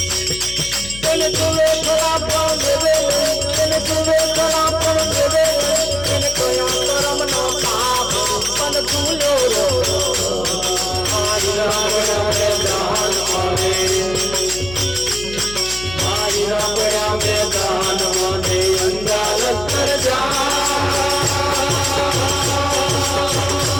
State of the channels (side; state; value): left; noise; hum, 12 dB below the sound